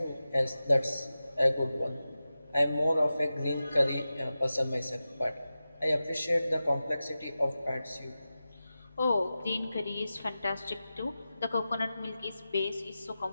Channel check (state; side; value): inverted; both; correlation -0.93